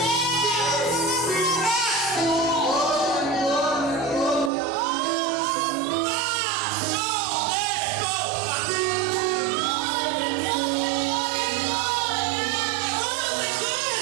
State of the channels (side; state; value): left; drops out; at 4.5 s